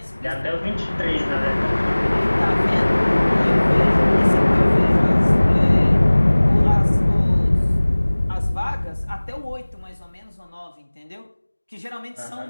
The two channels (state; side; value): inverted; both; correlation -1.00